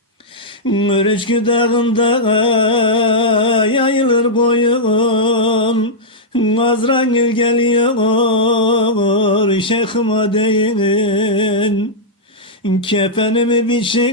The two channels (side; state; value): both; normal; correlation -0.09